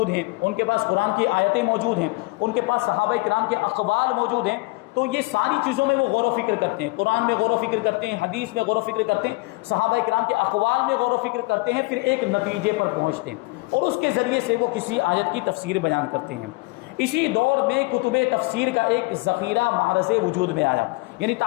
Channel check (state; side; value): quieter; right; 25.0 dB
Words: ہیں، ان کے پاس قرآن کی آیتیں موجود ہیں، ان کے پاس صحابہ کرام کے اقوال موجود ہیں، تو یہ ساری چیزوں میں وہ غور و فکر کرتے ہیں، قرآن میں غور و فکر کرتے ہیں، حدیث میں غور و فکر کرتے ہیں، صحابہ کرام کے اقوال میں غور و فکر کرتے ہیں، پھر ایک نتیجے پر پہنچتے ہیں اور اس کے ذریعے سے وہ کسی آیت کی تفسیر بیان کرتے ہیں۔ اسی دور میں کتب تفسیر کا ایک ذخیرہ معرض وجود میں آیا، یعنی